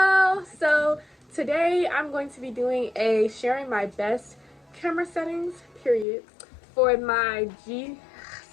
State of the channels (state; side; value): drops out; right; at 6.1 s